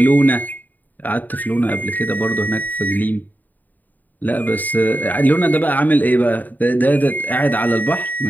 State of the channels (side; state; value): right; late; 0.085 ms